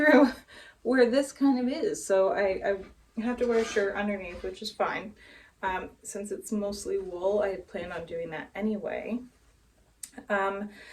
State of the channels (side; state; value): both; identical; correlation 1.00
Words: where this kind of is. So I have to wear a shirt underneath, which is fine. Since it's mostly wool, I had planned on doing that anyway.